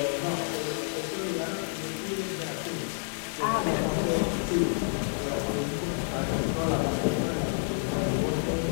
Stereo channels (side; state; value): right; silent; digital silence